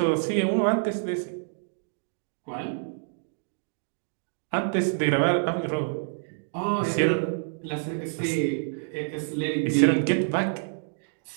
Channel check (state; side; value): silent; left; digital silence